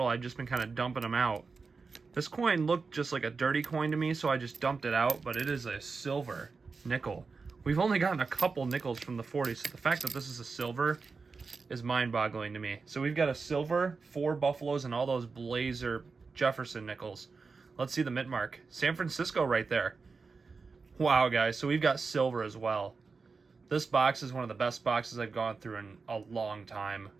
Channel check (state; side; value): quieter; left; 4.6 dB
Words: I've just been kind of dumping them out. This coin looked just like a dirty coin to me, so I just dumped it out, but it is a silver nickel. We've only gotten a couple nickels from the 40s, so the fact that this is a silver is mind-boggling to me. So we've got a silver, 4 Buffaloes, and all those Blazer Jefferson nickels. Let's see the mint mark. San Francisco right there. Wow, guys, so we've got silver as well. This box is one of the best boxes I've gone through in a long time.